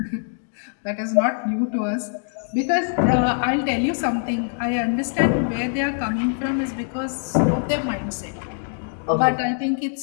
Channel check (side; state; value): right; silent; digital silence